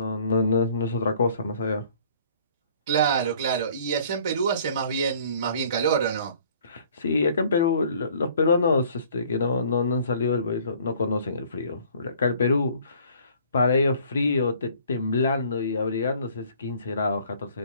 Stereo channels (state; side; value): inverted; both; correlation -0.55